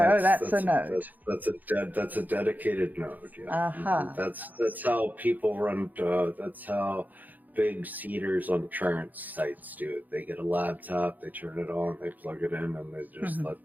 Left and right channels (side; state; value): left; late; 0.083 ms